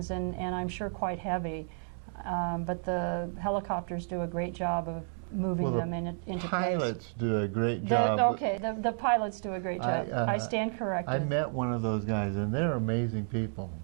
and I'm sure quite heavy, but the helicopters do a great job of moving them into place. Pilots do a great job. The pilots do a great job. I stand corrected. I met one of those guys, and they're amazing people.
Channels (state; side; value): silent; left; 57 dB below the other